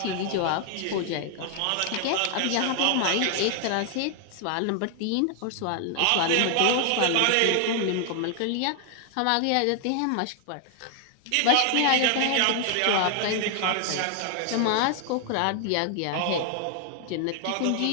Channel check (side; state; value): both; different; correlation 0.00